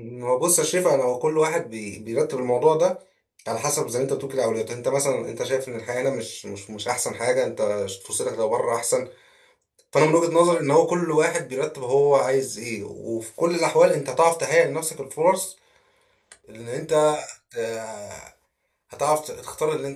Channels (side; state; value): both; identical; correlation 1.00